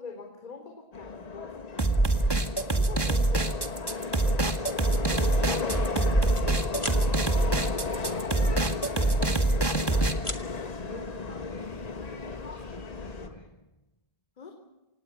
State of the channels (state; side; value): late; right; 1.1 ms